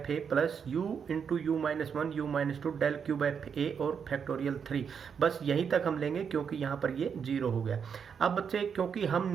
A plus U into U minus 1 U minus 2 del cube F A और factorial 3। बस यहीं तक हम लेंगे क्योंकि यहाँ पर ये 0 हो गया। अब बच्चे, क्योंकि हम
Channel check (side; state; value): left; quieter; 6.9 dB